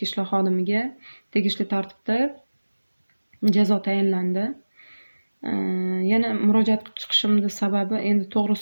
ishlar xodimiga tegishli tartibda jazo tayinlandi. Yana murojaat qilib chiqishimning sababi endi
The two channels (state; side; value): inverted; both; correlation -1.00